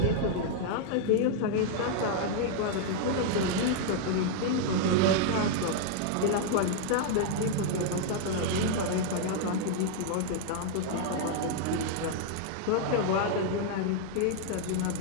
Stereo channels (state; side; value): different; both; correlation 0.00